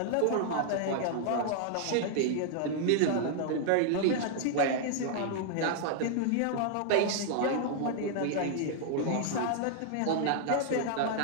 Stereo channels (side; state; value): both; different; correlation 0.00